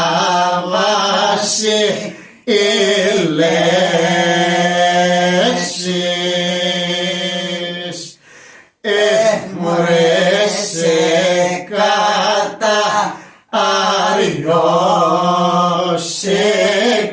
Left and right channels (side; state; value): both; identical; correlation 1.00